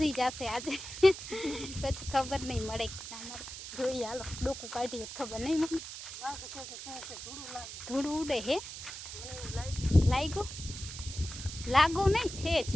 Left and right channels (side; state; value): right; noise; hiss, 10 dB below the sound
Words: જશે આજે. પછી ખબર નહીં મળે કે ના મળે, જોઈએ. હાલો ડોકું કાઢીએ, ખબર નહીં મમ્મી. ધૂળ ઉડે હે? લાગુ નહીં છે જ